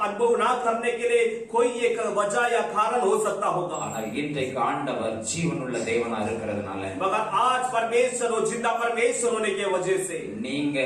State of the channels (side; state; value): both; identical; correlation 1.00